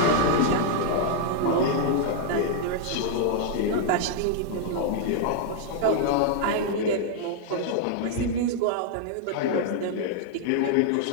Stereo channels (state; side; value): different; both; correlation -0.01